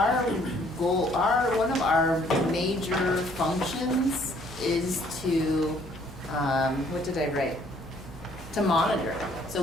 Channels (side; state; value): both; normal; correlation 0.62